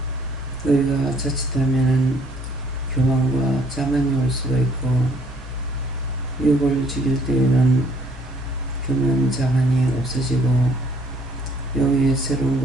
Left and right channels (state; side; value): normal; both; correlation 0.62